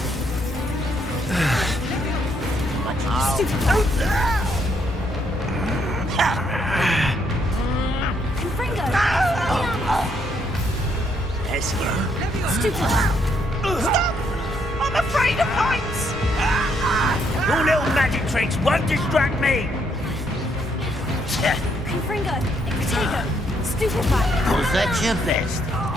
Confringo! Let's go. Stupid! Stop! I'm afraid of heights! Your little magic tricks won't distract me! Confringo! Protego! Stupefy! Was that your best?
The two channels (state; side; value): normal; both; correlation 0.73